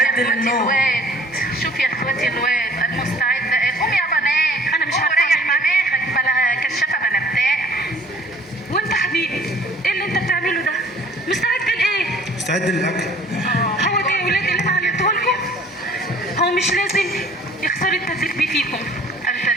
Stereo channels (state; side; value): normal; both; correlation 0.51